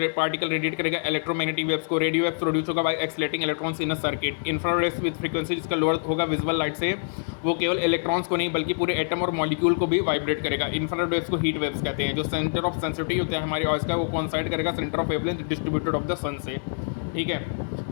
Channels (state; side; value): silent; right; 61 dB below the other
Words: particle radiate करेगा इलेक्ट्रोमैग्नेटिक वेव्स को। रेडियो वेव्स प्रोड्यूस होगा by accelerating electrons in a circuit. Infrared rays with frequency जिसका lower होगा विजुअल लाइट से, वो केवल इलेक्ट्रॉन्स को नहीं बल्कि पूरे एटम और मॉलिक्यूल को भी वाइब्रेट करेगा। इंफ्रारेड वेव्स को हीट वेव्स कहते हैं। जो सेंटर ऑफ सेंसिटिविटी होता है हमारे आइज का, वो कोइंसाइड करेगा centre of wavelength distributed of the sun से। ठीक है,